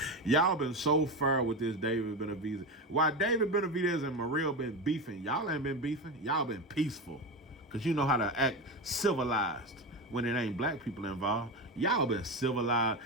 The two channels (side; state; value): both; normal; correlation 0.20